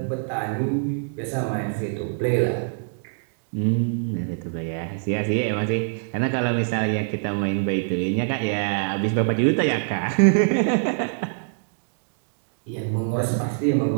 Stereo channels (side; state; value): left; silent; digital silence